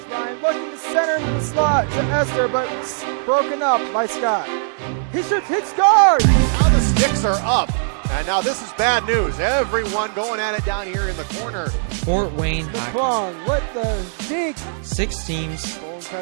Ryan looking to center into the slot to Esther, but broken up by Scott. He shoots, hits, scores! Now the sticks are up. And now this is bad news. Everyone going at it down here in the corner. Fort Wayne The Hockey. Plum with the deke. 6 teams. Bone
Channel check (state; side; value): silent; left; digital silence